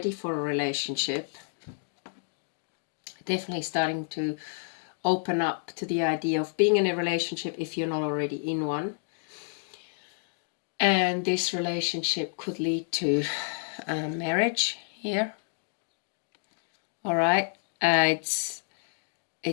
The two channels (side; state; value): right; silent; digital silence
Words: for a relationship. Definitely starting to open up to the idea of being in a relationship if you're not already in one. And this relationship could lead to marriage here. All right.